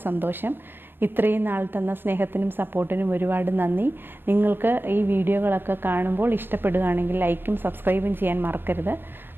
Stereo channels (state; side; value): late; left; 0.098 ms